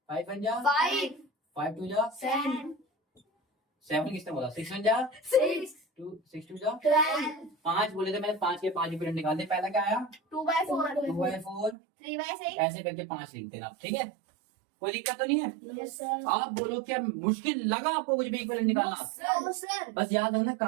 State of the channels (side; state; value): left; drops out; at 11.8 s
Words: 5 बन जा, 5 5 2 जा 7 7 किसने बोला, 6 बन जा 6 6 2 जा 12 5 बोले थे मैंने, 5 के 5 इक्विवेलेंट निकाल दे। पहला क्या आया, 2/4 2/4, 3/6 ऐसे करके 5 लिख देना, ठीक है। कोई दिक्कत तो नहीं है। Yes sir. आप बोलो क्या मुश्किल लगा आपको कुछ भी इक्विवेलेंट निकालना, नो सर बस याद रखना